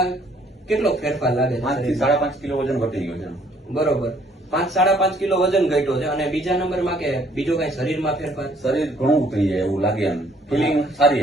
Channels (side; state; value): both; normal; correlation 0.63